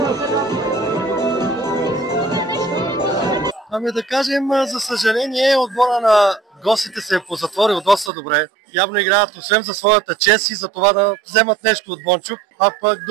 Ами да кажем, за съжаление, отбора на гостите се е позатворил доста добре. Явно играят освен за своята чест и за това да вземат нещо от Бончук. А пък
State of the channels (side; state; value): left; drops out; at 8.1 s